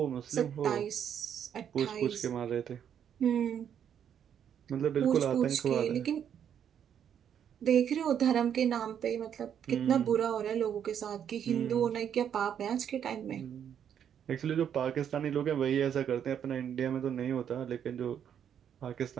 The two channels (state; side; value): quieter; left; 8.8 dB